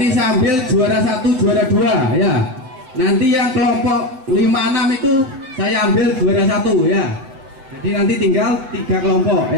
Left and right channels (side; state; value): left; late; 7.8 ms